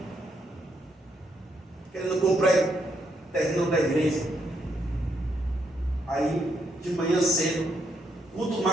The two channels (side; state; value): both; normal; correlation 0.76